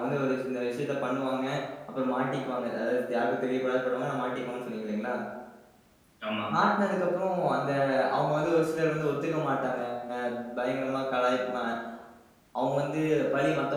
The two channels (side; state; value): both; identical; correlation 1.00